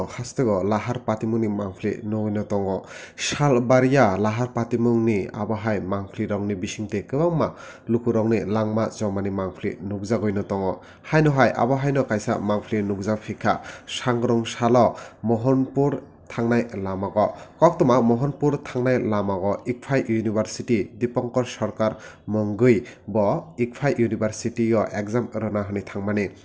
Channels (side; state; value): both; identical; correlation 1.00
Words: hastego Lahar Patimwng mangfli no tongo Shal baria Lahar Patimwng ni abahai mangfli rongni bisingte kwbangma lukurongni langma jomani mangfli nugjagoi no tongo haino hai abahai no kaisa mangfli nugjak phika sangrong salo Mohanpur Thangnai lamago koktoma Mohanpur Thangnai lamago Icfai University Dipankar Sarkar Mongui bo Icfai University o exam rana hani thangmani